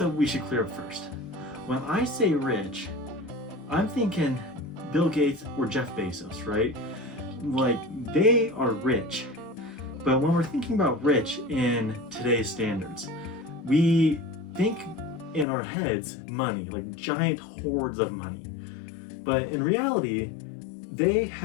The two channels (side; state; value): right; drops out; at 15.5 s